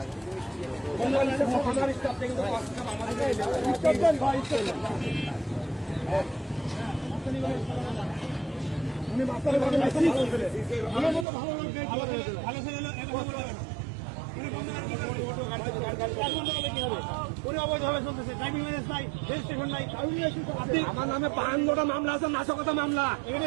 উনি মাস্টারের ভালো আমার নামে 52টা মামলা আছে, নাশকতা মামলা।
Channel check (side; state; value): left; drops out; at 11.2 s